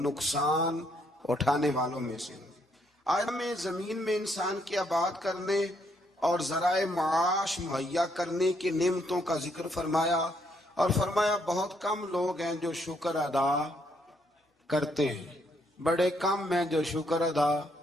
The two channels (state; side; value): normal; both; correlation 0.72